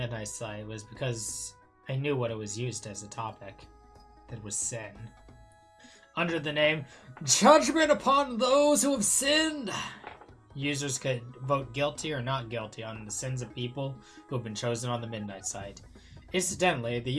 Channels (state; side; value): identical; both; correlation 1.00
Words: Site was because I knew what it was used as a topic. That was sin. Under the name, Judgment Upon Those Who Have Sinned, users could vote guilty or not guilty on the sins of people who have been chosen on the Midnight Site. Incidentally, the